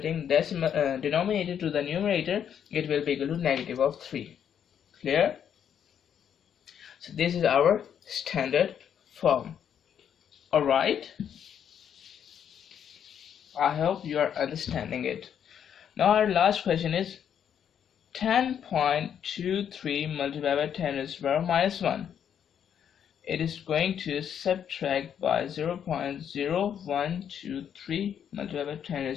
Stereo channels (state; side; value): quieter; right; 8.7 dB